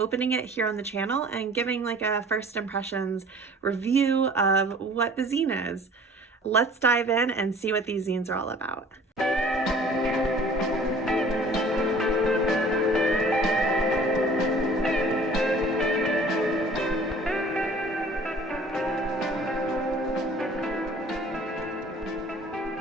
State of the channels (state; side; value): normal; both; correlation 0.49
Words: it here on the channel and giving like a first impressions review of what the zine is. Let's dive in and see what these zines are all about.